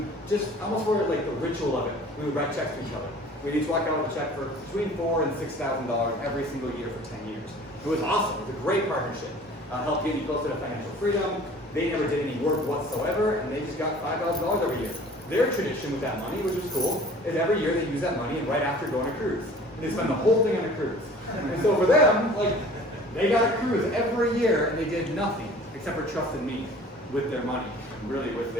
just, almost for like the ritual of it, we would write checks to each other. We'd each walk out with a check for between $4,000 and $6,000 every single year for 10 years. It was awesome. It was a great partnership. help get you closer to financial freedom. They never did any work whatsoever, and they just got $5,000 every year. Their tradition with that money, which is cool, is every year they use that money and right after go on a cruise. And they spend the whole thing on a cruise. And so for them, like, they got a cruise every year, and they did nothing except for trust in me with their money, and really with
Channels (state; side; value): normal; both; correlation 0.47